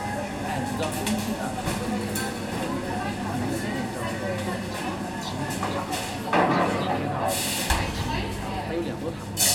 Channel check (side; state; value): both; identical; correlation 1.00